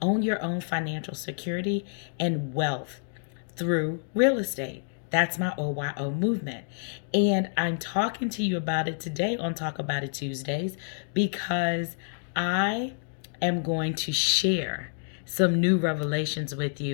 own your own financial security and wealth through real estate. That's my OYO movement. And I'm talking to you about it today on Talk About It Tuesdays because I am going to share some new revelations with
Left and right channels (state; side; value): silent; right; digital silence